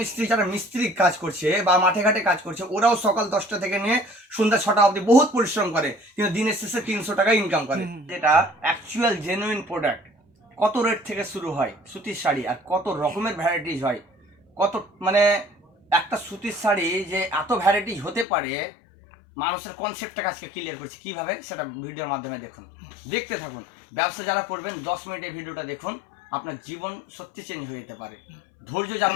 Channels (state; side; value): drops out; right; at 18.2 s